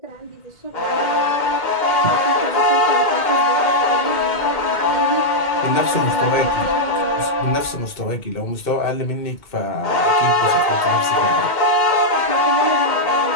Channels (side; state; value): right; late; 2.1 ms